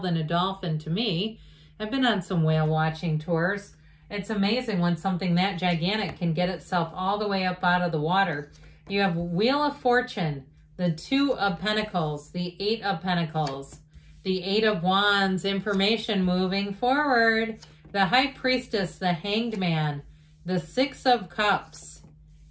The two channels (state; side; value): identical; both; correlation 1.00